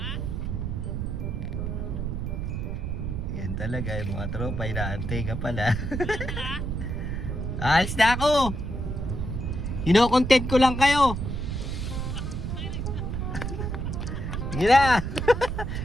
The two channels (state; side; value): noise; right; rumble, 3 dB below the sound